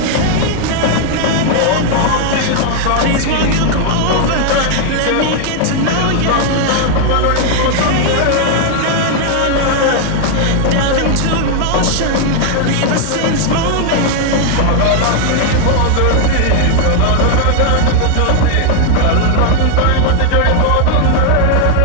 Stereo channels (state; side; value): different; both; correlation 0.00